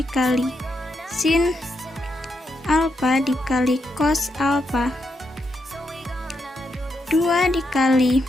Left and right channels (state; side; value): normal; both; correlation 0.82